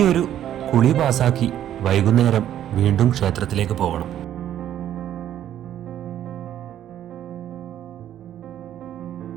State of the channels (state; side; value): quieter; left; 11.2 dB